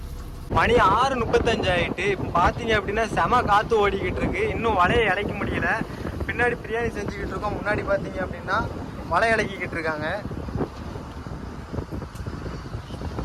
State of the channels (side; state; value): both; identical; correlation 1.00